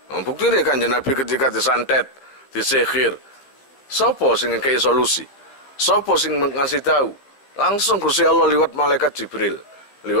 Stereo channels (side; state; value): right; late; 15 ms